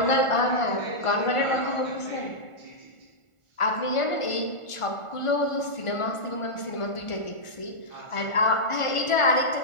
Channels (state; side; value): late; right; 1.5 ms